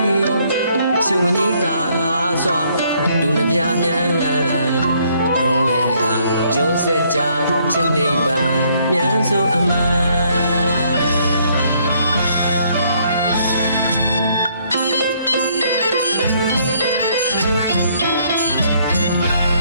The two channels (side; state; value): both; inverted; correlation -0.67